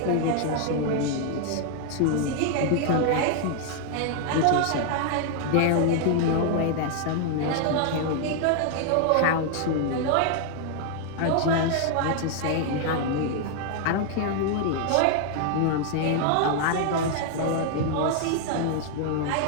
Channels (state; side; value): different; both; correlation 0.00